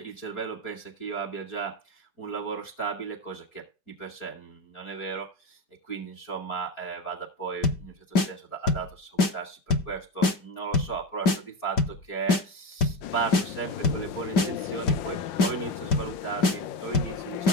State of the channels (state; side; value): late; right; 5.1 ms